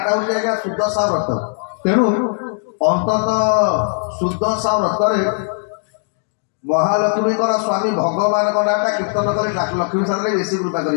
हूँ आज्ञा सुदशा व्रत तेणु अंतत सुदशा व्रत महालक्ष्मी स्वामी भगवान नाटा कीर्तन कर लक्ष्मी सारे बेसी कृपा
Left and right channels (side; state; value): right; silent; digital silence